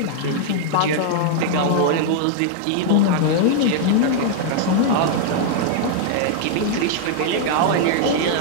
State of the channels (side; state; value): both; different; correlation -0.01